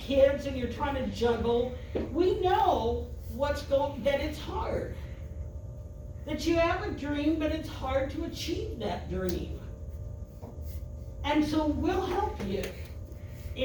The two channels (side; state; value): both; identical; correlation 1.00